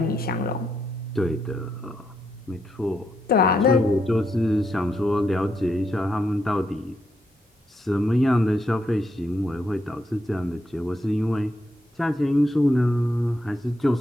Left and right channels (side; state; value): both; normal; correlation 0.79